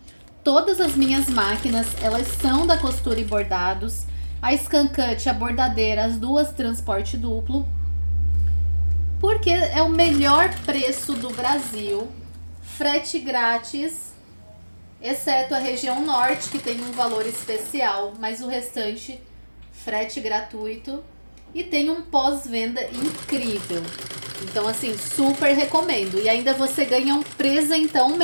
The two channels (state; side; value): inverted; both; correlation -1.00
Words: Todas as minhas máquinas, elas são da Costura e Bordados. A Scancut, a bordadeira, as duas transporte duplo. Porque é o melhor preço do Brasil. Frete grátis, exceto a região norte, que tem um valor especial, mas o restante, frete gratuito. E tem um pós-venda incrível. Então, assim, super recomendo. E ainda você ganha um presentão